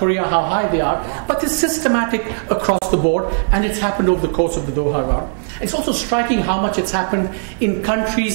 how high they are, but it's systematic across the board, and it's happened over the course of the Doha round. It's also striking how much it's happened in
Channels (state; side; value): silent; left; digital silence